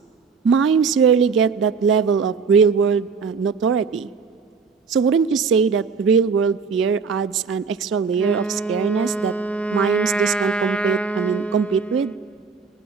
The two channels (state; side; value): quieter; left; 5.4 dB